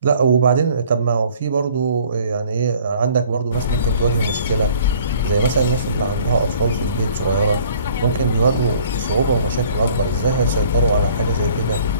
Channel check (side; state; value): both; inverted; correlation -0.54